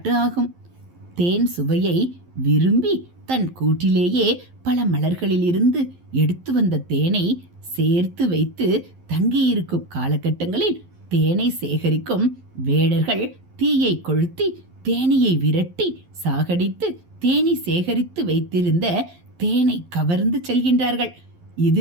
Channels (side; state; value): left; late; 11 ms